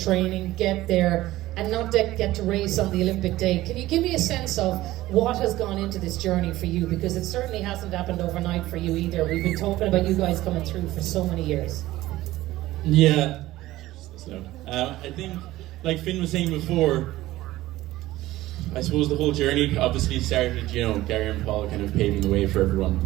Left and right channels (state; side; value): quieter; left; 16.5 dB